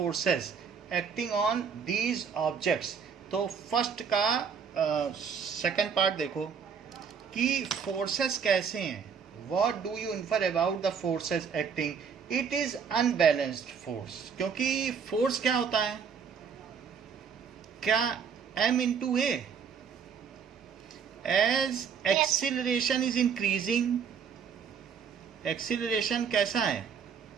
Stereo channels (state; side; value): quieter; left; 6.6 dB